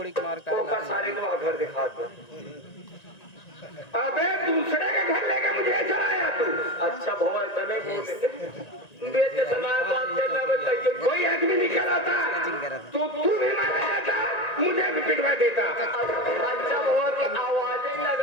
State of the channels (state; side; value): late; right; 1.9 ms